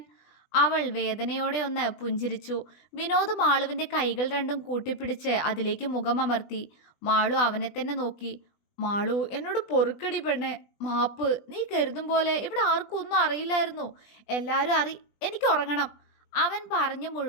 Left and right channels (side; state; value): right; late; 20 ms